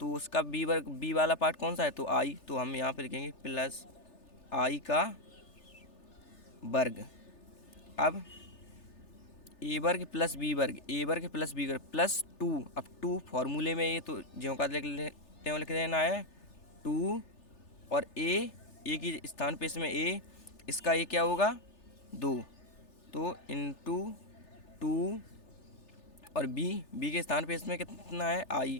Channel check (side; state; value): right; late; 3.3 ms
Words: उसका b वर्ग b वाला पार्ट कौन सा है? तो i, तो हम यहाँ पे लिखेंगे प्लस i का वर्ग। अब a वर्ग प्लस b वर्ग, a वर्ग प्लस b वर्ग प्लस 2। अब 2 फॉर्मूले में ये तो ज्यों का लिख देना है 2, और a की स्थान पे इसमें a, इसका ये क्या होगा? 2, तो इंटू 2, और b के स्थान पे इसमें कितना है? i,